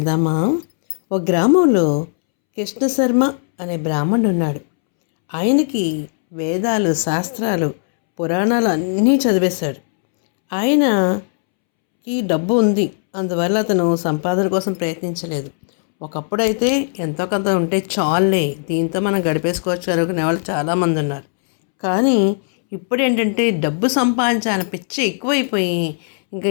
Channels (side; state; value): right; silent; 67 dB below the other